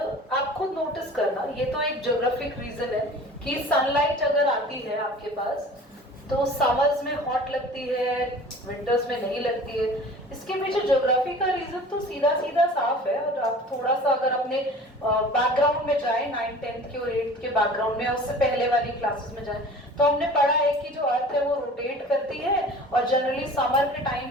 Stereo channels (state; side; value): normal; both; correlation 0.43